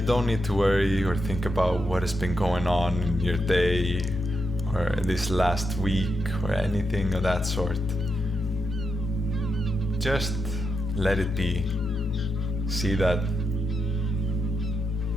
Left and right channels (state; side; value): normal; both; correlation 0.85